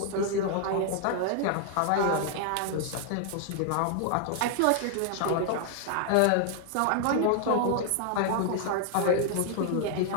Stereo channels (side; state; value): both; different; correlation 0.00